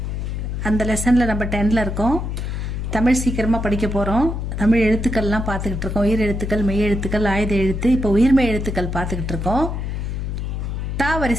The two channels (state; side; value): noise; left; hum, 3 dB below the sound